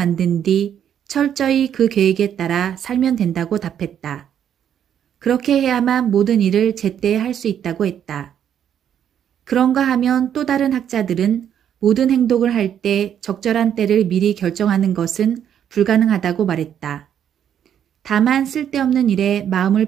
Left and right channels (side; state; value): left; quieter; 9.3 dB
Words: 뒤 철저히 그 계획에 따라 살면 된다고 답했다. 그렇게 해야만 모든 일을 제때 할 수 있다고 했다. 그런가 하면 또 다른 학자들은 모든 행동을 할 때 적절한 때를 미리 결정하는 것은 불가능하다고 말했다. 다만 쓸데없는 일에 마음을